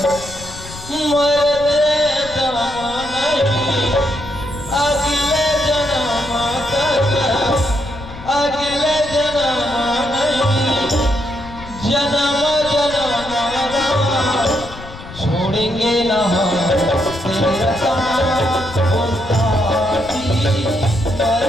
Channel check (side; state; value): left; noise; rumble, 14 dB below the sound